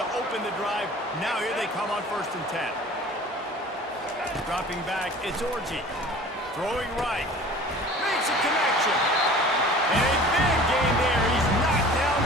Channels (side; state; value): both; normal; correlation 0.44